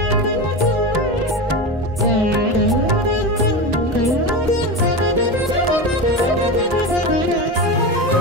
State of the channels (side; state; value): both; normal; correlation 0.21